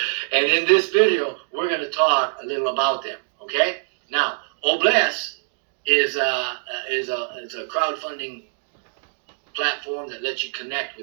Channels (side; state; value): left; silent; digital silence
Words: And in this video, we're going to talk a little about them, okay? Now, O-Bless is a crowdfunding platform that lets you connect